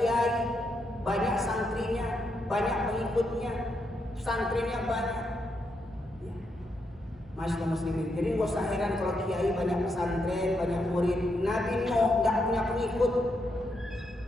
banyak santrinya, banyak pengikutnya, santrinya banyak. Ya. Masya Allah muslimin. Jadi nggak usah heran kalau kiai banyak pesantren, banyak murid. Nabi Nuh nggak punya pengikut.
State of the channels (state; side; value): normal; both; correlation 0.81